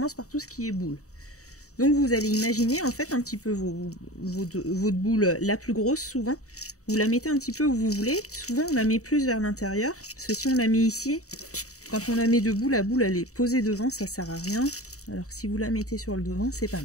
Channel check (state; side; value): late; right; 0.65 ms